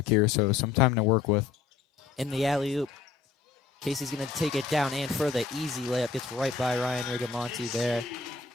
here, so some time to work with. In the alley-oop, Casey's going to take it down and for the easy layup. Gets right by Ryan Rigamonti there.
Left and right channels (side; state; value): right; quieter; 5.1 dB